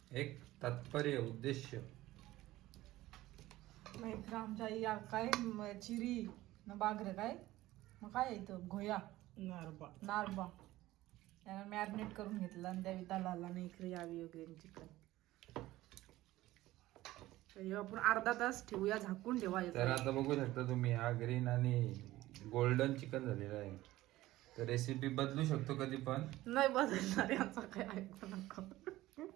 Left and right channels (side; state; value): left; quieter; 16.7 dB